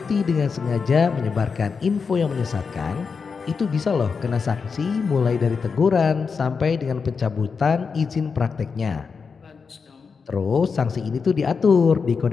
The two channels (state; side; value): quieter; right; 5.4 dB